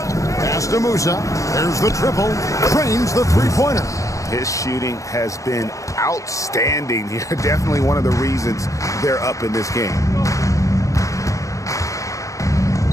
Pass to Musa. There's the triple. Trains the three-pointer. His shooting has been outstanding here. Definitely one of the reasons they're up in this game.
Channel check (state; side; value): late; right; 0.16 ms